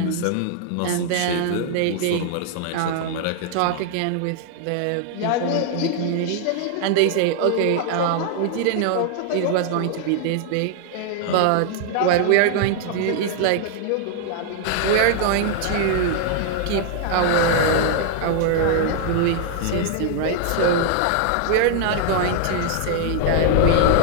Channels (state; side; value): different; both; correlation 0.00